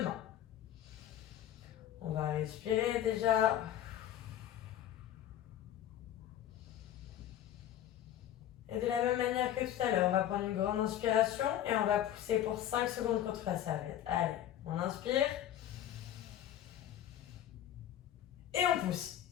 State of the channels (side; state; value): right; quieter; 11.5 dB